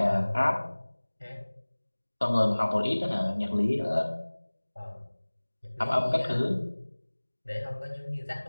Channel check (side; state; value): both; inverted; correlation -1.00